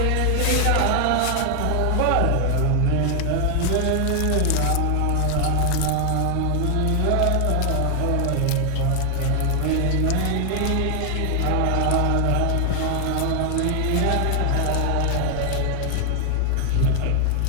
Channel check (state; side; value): different; both; correlation 0.00